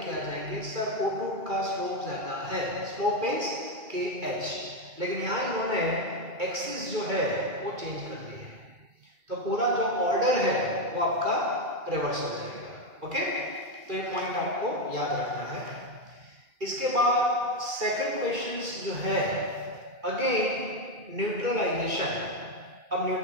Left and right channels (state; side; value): late; left; 2.3 ms